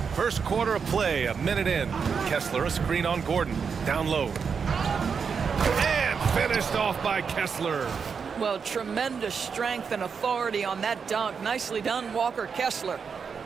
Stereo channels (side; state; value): left; quieter; 6.0 dB